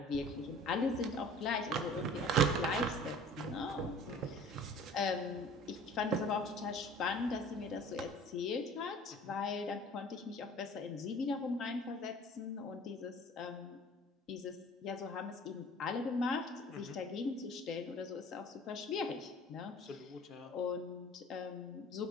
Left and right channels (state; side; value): normal; both; correlation 0.46